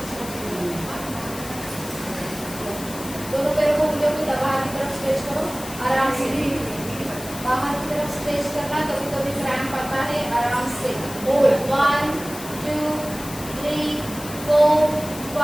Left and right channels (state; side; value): noise; left; hiss, 12 dB below the sound